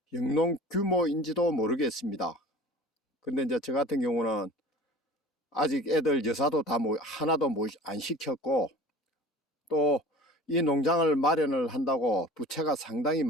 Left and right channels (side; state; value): both; normal; correlation 0.42